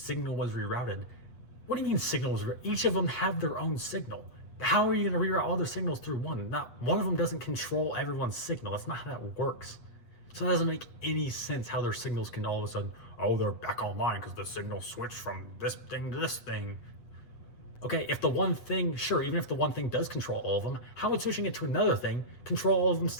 was rerouted. What do you mean signal was rerouted? Each of them have their own signal. How are you going to reroute all their signals through one? Not one of them doesn't control everyone's signal. That's not how that works. So that doesn't make any sense how their signals can all of a sudden, they're back online because the signal switched from this thing to this thing. Okay, if the one thing, sure, even if the one thing does control all of them, how would switching it to another thing control all of them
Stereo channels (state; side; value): late; right; 8.3 ms